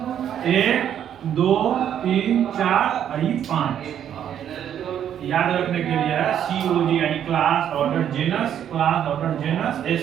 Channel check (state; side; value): quieter; left; 9.7 dB